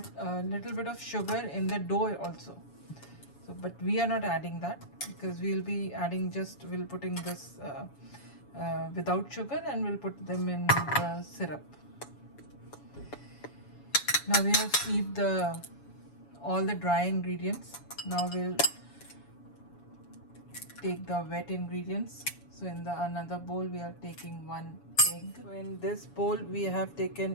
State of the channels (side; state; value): right; late; 7.1 ms